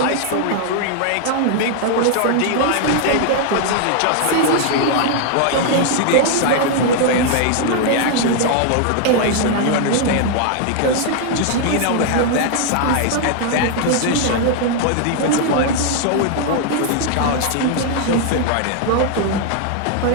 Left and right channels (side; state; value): both; different; correlation 0.00